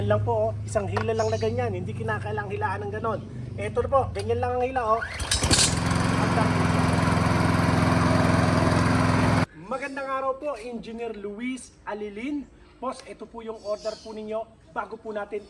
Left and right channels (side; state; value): both; identical; correlation 1.00